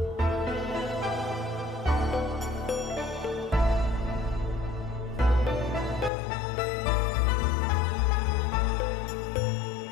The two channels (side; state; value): right; drops out; at 6.1 s